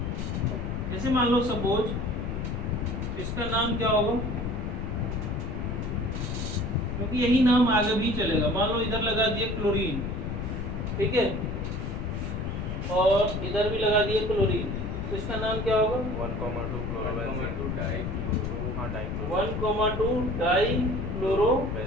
जैसे मान लो सपोज इसका नाम क्या होगा, क्योंकि यही नाम आगे भी चलेगा। मान लो इधर लगा दिए क्लोरीन, ठीक है, और इधर भी लगा दिए क्लोरीन, तो इसका नाम क्या होगा? 1,2 क्लोरोबेंजीन। 1,2 डाई हाँ dichloro 1,2 die chloro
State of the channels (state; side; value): noise; left; rumble, 3 dB below the sound